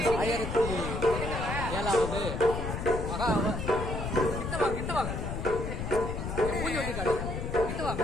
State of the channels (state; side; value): noise; left; rumble, 4 dB below the sound